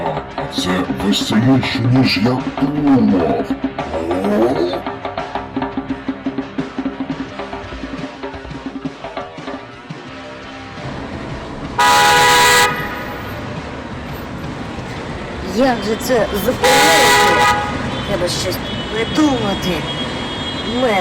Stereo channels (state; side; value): identical; both; correlation 1.00